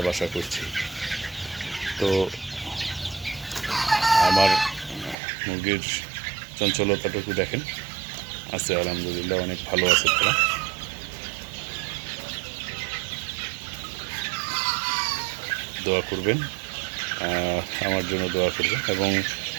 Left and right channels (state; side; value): drops out; left; at 5.2 s